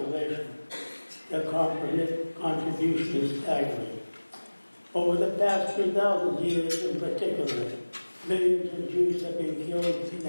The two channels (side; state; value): both; inverted; correlation -1.00